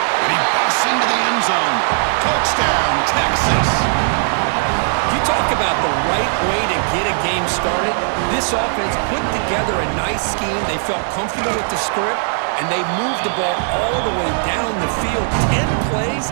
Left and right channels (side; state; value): left; silent; digital silence